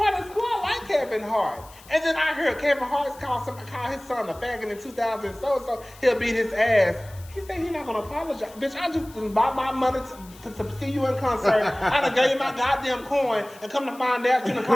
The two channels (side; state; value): left; noise; hiss, 22 dB below the sound